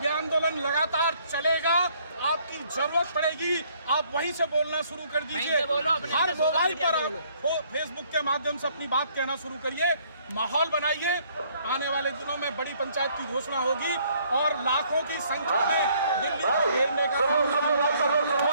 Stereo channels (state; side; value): inverted; both; correlation -0.64